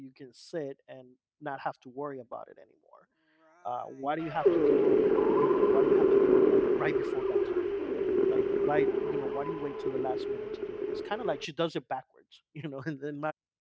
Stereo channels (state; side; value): identical; both; correlation 1.00